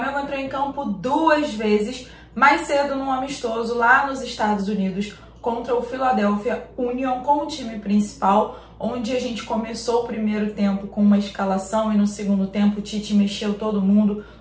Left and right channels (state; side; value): identical; both; correlation 1.00